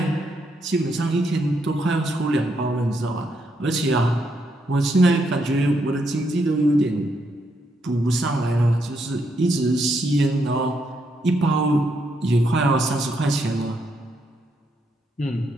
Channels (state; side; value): normal; both; correlation 0.78